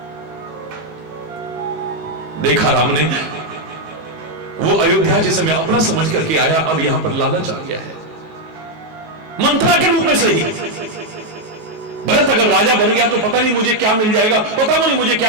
देखा राम ने वो अयोध्या जिसे मैं अपना समझ करके आया, अब यहां पर लालच आ गया है, मंत्रा के रूप में सही। भरत अगर राजा बन गया तो पता नहीं मुझे क्या मिल जाएगा, पता नहीं मुझे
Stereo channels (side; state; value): left; late; 19 ms